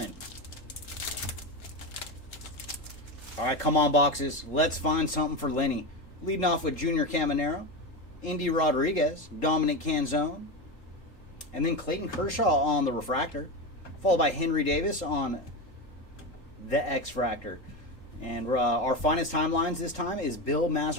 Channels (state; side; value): late; right; 3.7 ms